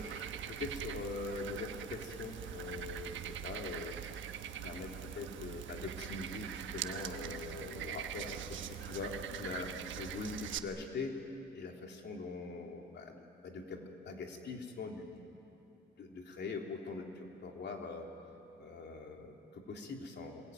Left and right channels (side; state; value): both; normal; correlation 0.30